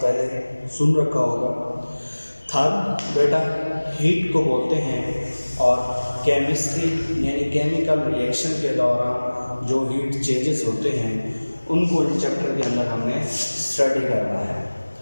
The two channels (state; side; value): inverted; both; correlation -1.00